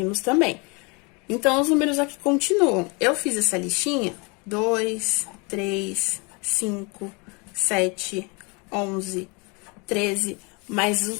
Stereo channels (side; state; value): right; quieter; 30.3 dB